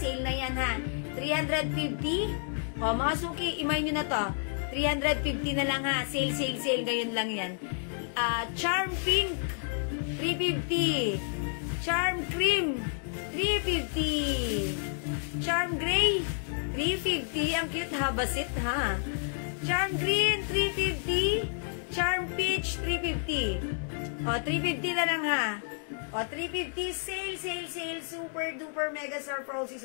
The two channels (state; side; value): silent; right; 58 dB below the other